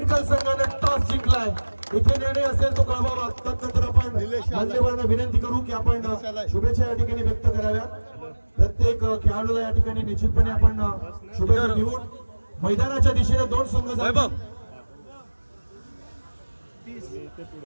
संघाने टॉस जिंकलाय. इथे निर्णय असेल तो कळवावा. तत्नंतर आपण मान्यवरांना विनंती करू की आपण शुभेच्छा या ठिकाणी व्यक्त कराव्यात. प्रत्येक खेळाडूला या ठिकाणी निश्चितपणे आपण शुभेच्छा देऊन मैदानाच्या दिशेने दोन संघ जातील.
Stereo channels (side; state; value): both; inverted; correlation -1.00